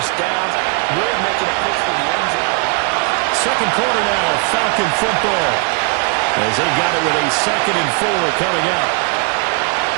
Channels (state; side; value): quieter; left; 33.0 dB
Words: downs, really making a push for the end zone. Second quarter now, Falcon football, as they got it with a 2nd and 4 coming up.